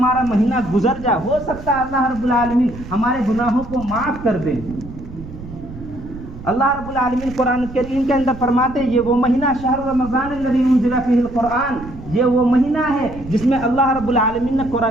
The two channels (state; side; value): noise; right; rumble, 14 dB below the sound